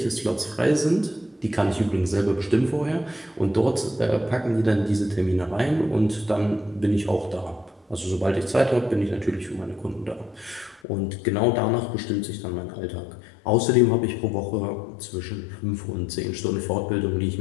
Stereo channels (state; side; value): drops out; right; at 10.8 s